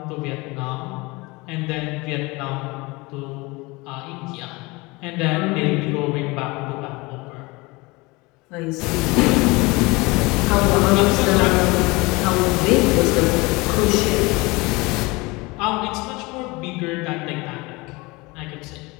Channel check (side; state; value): right; quieter; 24.2 dB